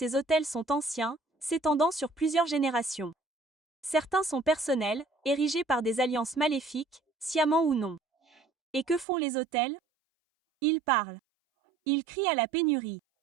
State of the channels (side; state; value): left; drops out; at 9.1 s